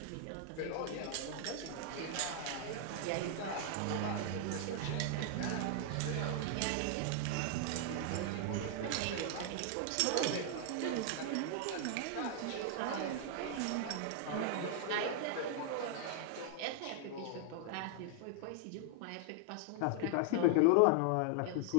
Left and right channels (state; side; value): different; both; correlation 0.00